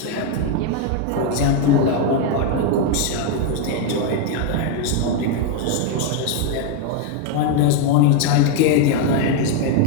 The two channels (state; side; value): different; both; correlation 0.01